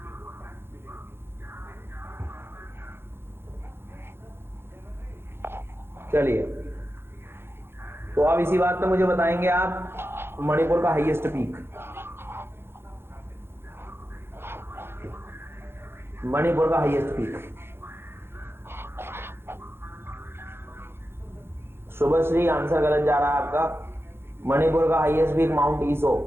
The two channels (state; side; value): late; left; 0.11 ms